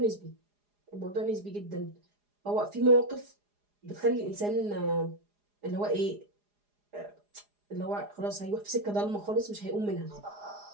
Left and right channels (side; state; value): left; late; 4.9 ms